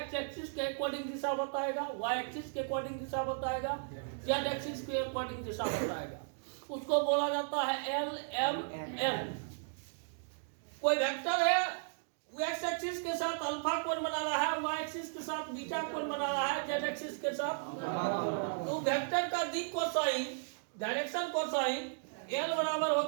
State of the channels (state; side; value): silent; left; digital silence